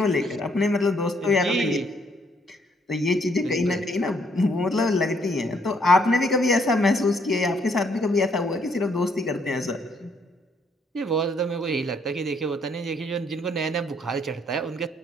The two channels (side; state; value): both; normal; correlation 0.69